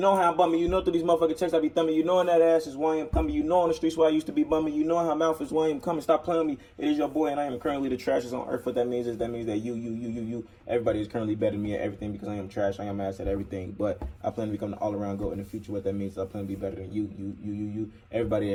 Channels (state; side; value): identical; both; correlation 1.00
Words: how I'm bumming, you know through these motherfucking checks I be thumbing, you know in that ass is why I'm coming, you know on the streets where I used to be bumming, you know how mouth is why I'm coming. Stop playing with me. It is your boy and I am currently the trashest on earth. What that means is that you, everybody is currently better than me at everything because I am trash, I am ass at everything. But I plan to become the all-around GOAT in the future. What that means is I plan to be better than you,